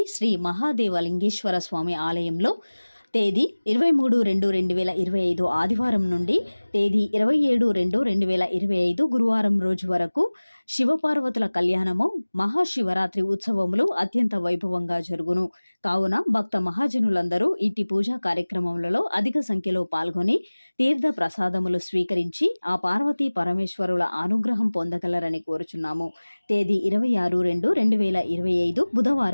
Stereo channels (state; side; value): inverted; both; correlation -1.00